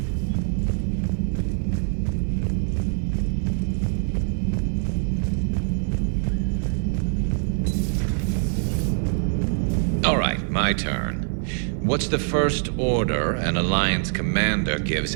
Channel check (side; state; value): left; silent; digital silence